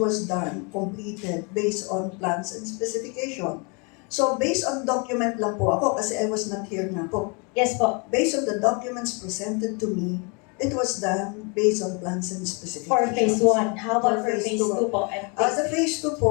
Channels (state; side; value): quieter; right; 32.7 dB